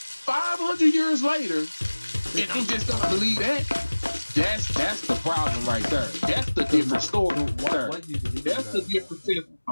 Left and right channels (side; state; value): both; inverted; correlation -1.00